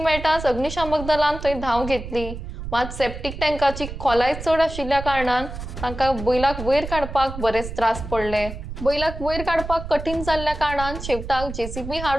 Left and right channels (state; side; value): noise; right; rumble, 9 dB below the sound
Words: अग्निशामक दलान थंय धांव घेतली, मात सेप्टीक टँकाची खोलाय चड आशिल्ल्या कारणान तांकां बैलाक वयर काडपाक बरेच त्रास पडले। बैलाक वयर काडपाक कठीण जाल्ल्या कारणान शेवटाक जेसीबी